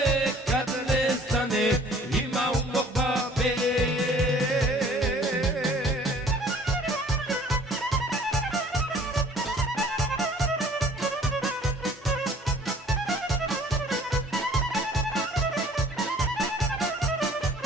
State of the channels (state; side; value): normal; both; correlation 0.53